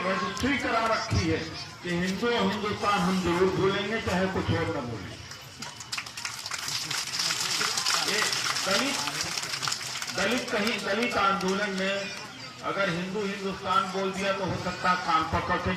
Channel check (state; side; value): identical; both; correlation 1.00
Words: रजिस्ट्री करा रखी है कि हिंदुस्तान हम जरूर भूलेंगे चाहे कुछ और न बोलें। दलित आंदोलन में अगर हिंदुस्तान बोल दिया तो हो सकता है कान पकड़ के